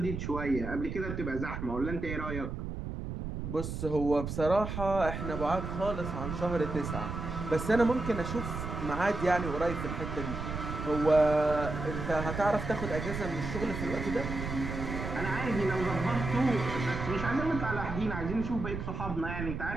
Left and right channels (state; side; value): noise; right; rumble, 5 dB below the sound